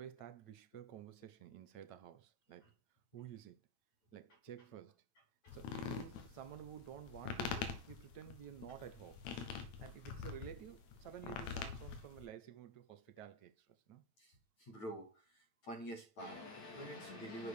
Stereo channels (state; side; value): late; right; 9.0 ms